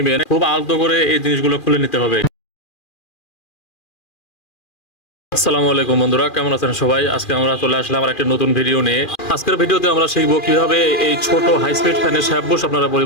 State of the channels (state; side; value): late; right; 2.4 ms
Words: খুব আলতো করে এই জিনিসগুলো খুলে নিতে হবে। আসসালামু আলাইকুম বন্ধুরা, কেমন আছেন সবাই? আজকে আমরা চলে আসলাম আর একটা নতুন ভিডিও নিয়ে। আজকের ভিডিওতে আমরা শিখবো কিভাবে এই ছোট হাই স্পিড ফ্যানের শ্যাপ বুশ আপনারা